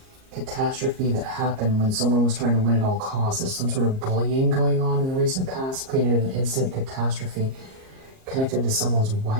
catastrophe that happened when someone was trying to win at all costs. There's some sort of bullying going on in the recent past, created an instant catastrophe connected to someone's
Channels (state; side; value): late; left; 38 ms